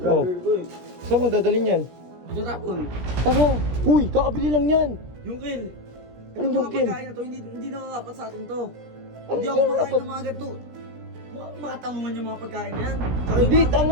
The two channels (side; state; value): left; late; 17 ms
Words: Oh. brother ko eh. Saan mo dadalhin yan? Tinatapon. Tama! Uy, kakabili lang yan! Yung kail. Anong yung mga kail? pagkain na to, hindi na dapat sa atin to. Ano Hindi yung ako makain dapat? ng mga ganito. Matangungan yung mga pagkain na yan. Hindi,